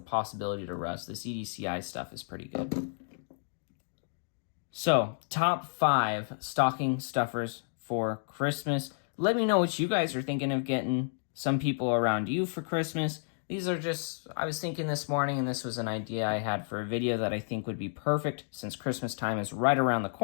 to rust, this EDCI stuff is pretty good. So, top 5 stocking stuffers for Christmas. Let me know what you guys are thinking of getting some people around you for Christmas. These are just, I was thinking this morning, and this was an idea I had for a video that I think would be perfect since Christmas time is right around the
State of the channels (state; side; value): silent; right; digital silence